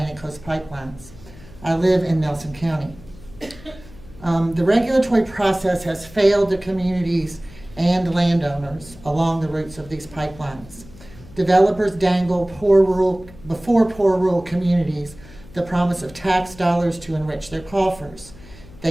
Coast pipelines. I live in Nelson County. The regulatory process has failed the communities and landowners along the routes of these pipelines. Developers dangle before poor rural communities the promise of tax dollars to enrich their coffers.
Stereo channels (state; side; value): noise; left; hum, 20 dB below the sound